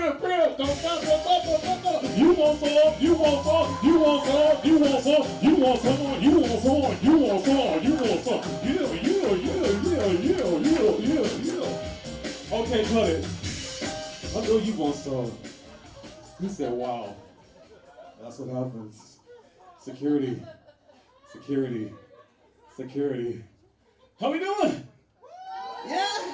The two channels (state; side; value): identical; both; correlation 1.00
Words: up, bring it up. Don't stop, don't stop, don't stop, don't stop. You want some, you want some, you want some, you want some, you want some, you want some, you want some, you want some. Yeah. Okay, cut it. I know you want some. He said, wow. That's what happens. Security. Security. Security. How we doing?